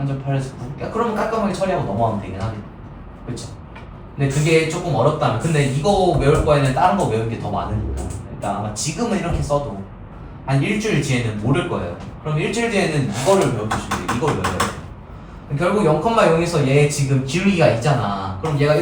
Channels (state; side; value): identical; both; correlation 1.00